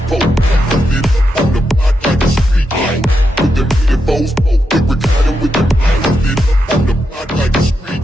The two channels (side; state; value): both; normal; correlation 0.85